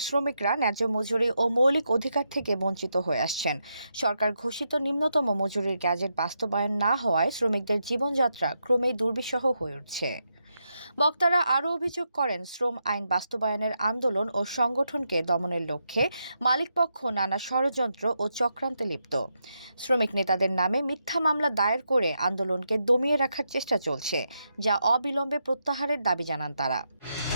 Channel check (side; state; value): both; inverted; correlation -0.83